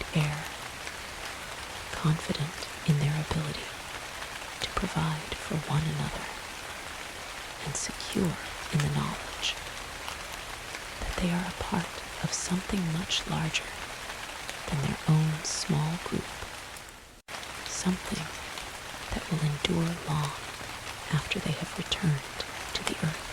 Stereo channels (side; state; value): both; identical; correlation 1.00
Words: air, confident in their ability to provide for one another and secure in the knowledge that they are a part of something much larger than their own small group, something that will endure long after they have returned to the